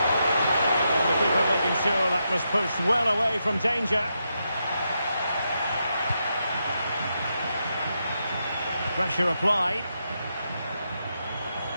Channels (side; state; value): both; inverted; correlation -0.84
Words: the keeper making sure that was pushed well away from danger. Pressure applied.